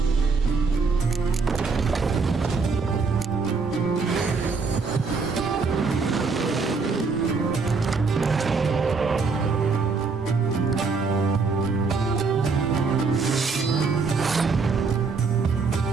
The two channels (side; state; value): left; quieter; 4.6 dB